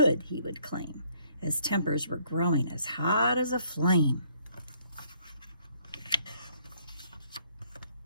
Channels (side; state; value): both; inverted; correlation -0.66